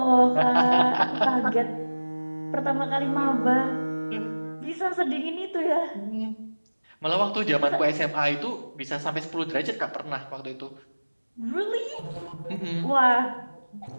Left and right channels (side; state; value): both; inverted; correlation -1.00